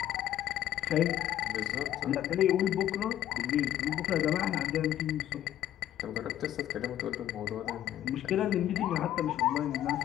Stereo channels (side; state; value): right; quieter; 12.0 dB